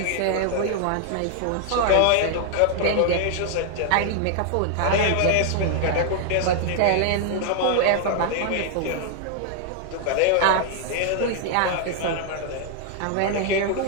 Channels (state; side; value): different; both; correlation 0.00